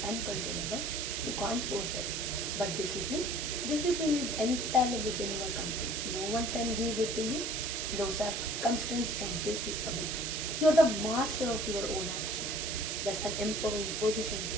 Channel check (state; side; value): noise; right; hiss, 2 dB below the sound